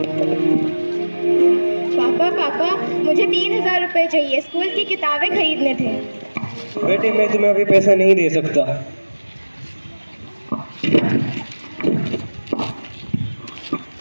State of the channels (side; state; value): both; inverted; correlation -1.00